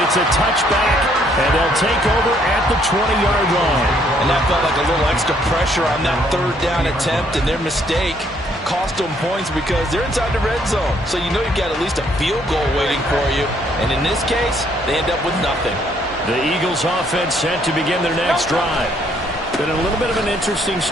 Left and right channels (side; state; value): both; normal; correlation 0.67